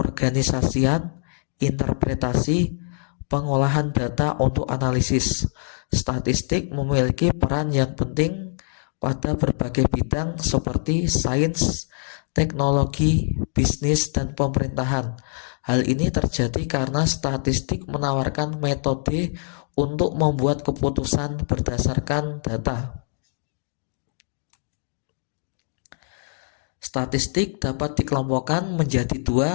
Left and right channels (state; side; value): silent; right; digital silence